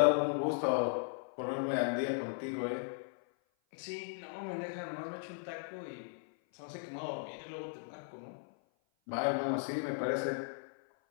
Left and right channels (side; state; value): right; silent; 53 dB below the other